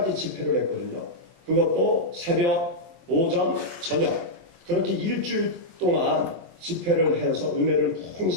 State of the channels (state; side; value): late; left; 23 ms